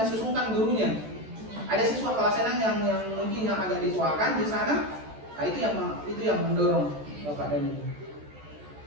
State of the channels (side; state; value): left; late; 14 ms